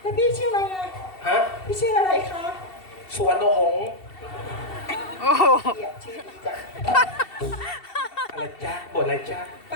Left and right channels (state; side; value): late; right; 2.7 ms